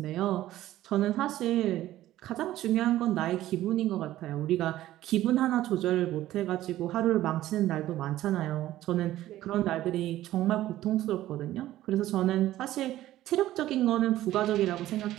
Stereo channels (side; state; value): left; quieter; 14.3 dB